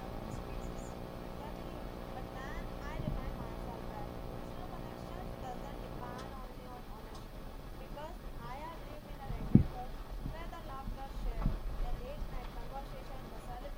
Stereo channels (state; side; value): identical; both; correlation 1.00